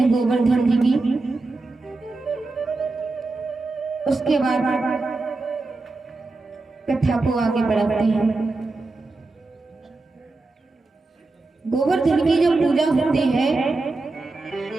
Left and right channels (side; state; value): left; quieter; 3.4 dB